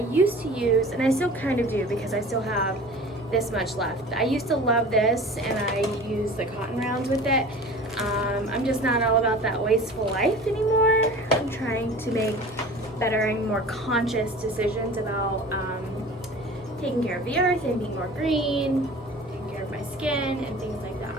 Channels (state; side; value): normal; both; correlation 0.40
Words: to use, and I still kind of do because I still have this much left. I used to love this and I use the cotton rounds with it. I'm just not all about that wasteful life anymore. I'm trying to make better and more conscious decisions about taking care of the earth and being more green, taking care of my skin and things like